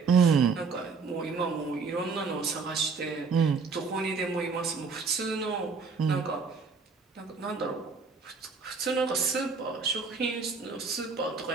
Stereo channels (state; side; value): quieter; left; 4.9 dB